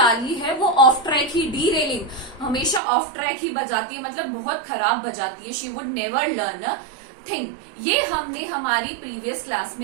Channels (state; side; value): drops out; left; at 2.8 s